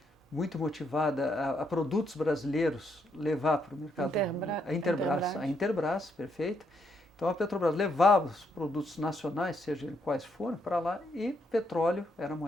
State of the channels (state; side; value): normal; both; correlation 0.76